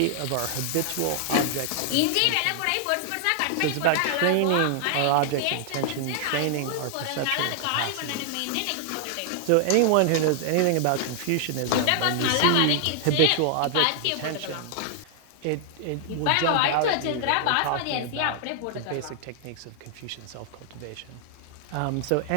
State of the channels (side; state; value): both; different; correlation 0.00